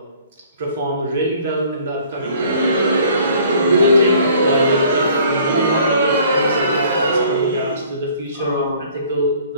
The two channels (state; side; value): inverted; both; correlation -0.55